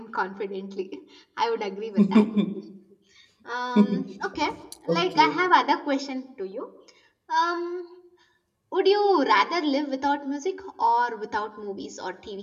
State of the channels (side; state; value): both; identical; correlation 1.00